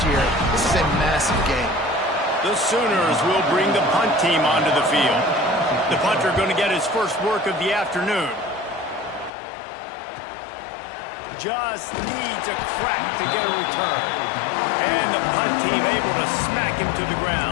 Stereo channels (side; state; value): right; drops out; at 9.3 s